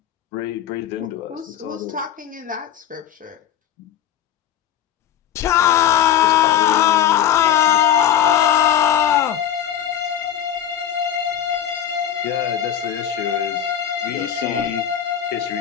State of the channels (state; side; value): quieter; right; 10.2 dB